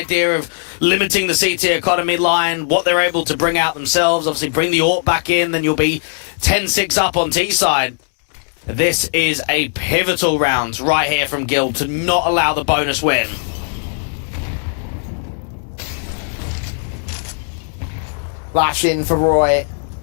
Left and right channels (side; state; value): right; silent; digital silence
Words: of limiting the CT economy line, what they're able to bring out themselves, obviously bring the AWP back in, then you'll be 10-6 up on T side. This is a pivotal round right here from Guild to not allow the bonus win. Flash in for Roy.